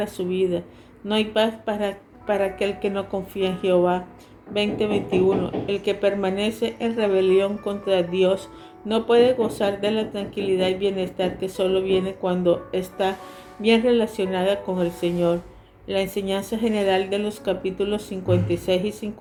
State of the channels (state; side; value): identical; both; correlation 1.00